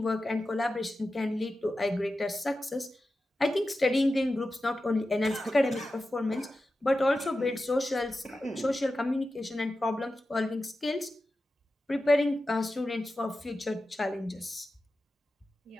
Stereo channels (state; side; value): normal; both; correlation 0.92